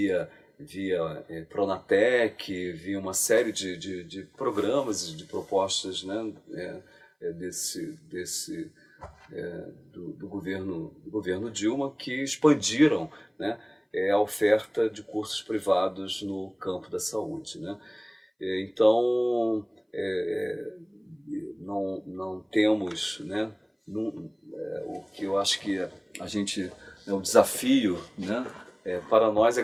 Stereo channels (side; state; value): both; identical; correlation 1.00